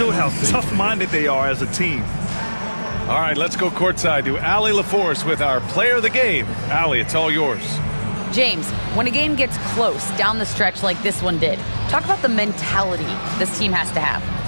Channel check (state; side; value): inverted; both; correlation -1.00